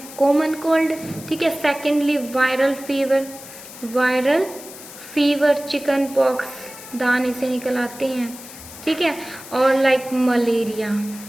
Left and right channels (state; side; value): noise; left; hiss, 15 dB below the sound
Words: कॉमन कोल्ड, ठीक है। Secondly viral fever. Viral fever, chicken pox, दाने से निकल आते हैं, ठीक है। और लाइक मलेरिया,